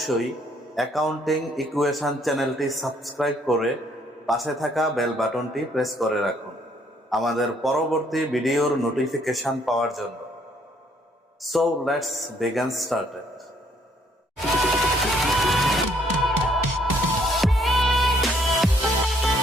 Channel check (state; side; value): normal; both; correlation 0.66